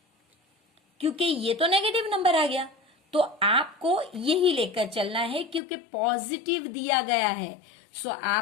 क्योंकि ये तो नेगेटिव नंबर आ गया, तो आपको यही लेकर चलना है क्योंकि पॉजिटिव दिया गया है। सो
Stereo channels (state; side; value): drops out; right; at 5.6 s